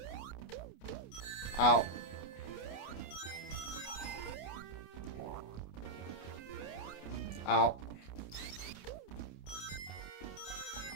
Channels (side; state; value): right; late; 29 ms